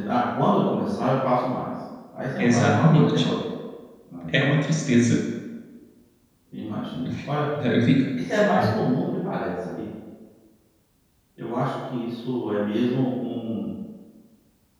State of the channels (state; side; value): identical; both; correlation 1.00